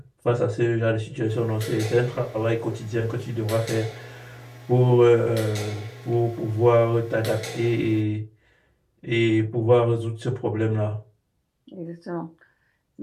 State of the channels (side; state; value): both; identical; correlation 1.00